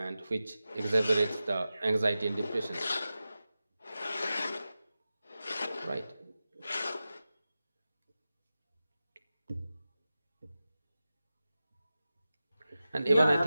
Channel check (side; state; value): both; inverted; correlation -0.94